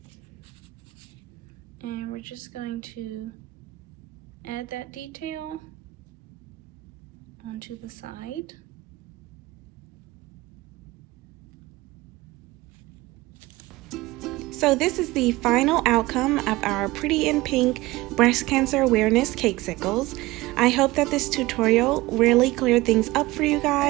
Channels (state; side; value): quieter; left; 19.7 dB